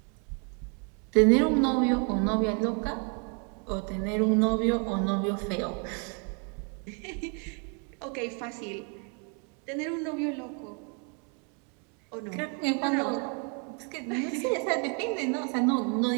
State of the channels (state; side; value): quieter; left; 37.9 dB